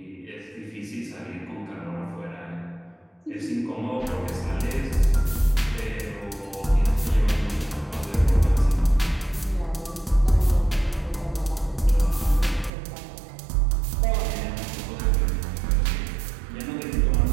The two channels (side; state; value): left; drops out; at 12.7 s